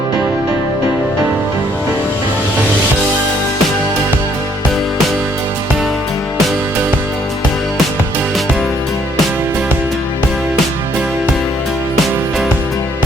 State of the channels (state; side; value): normal; both; correlation 0.66